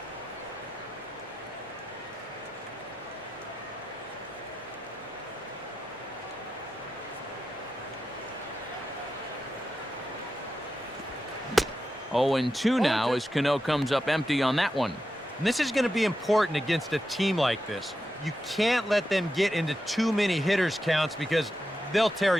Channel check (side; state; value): both; normal; correlation 0.89